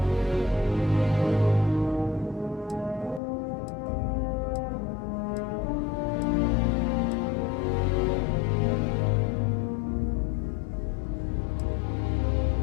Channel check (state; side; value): drops out; right; at 3.2 s